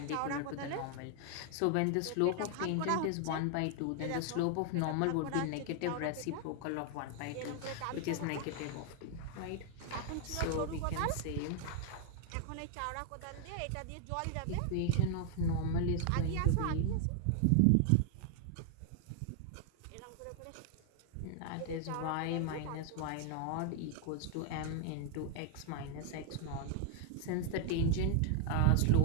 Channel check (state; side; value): different; both; correlation 0.00